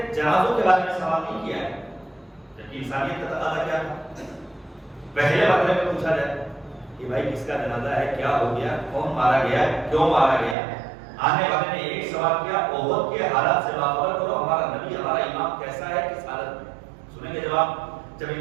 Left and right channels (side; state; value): left; drops out; at 10.6 s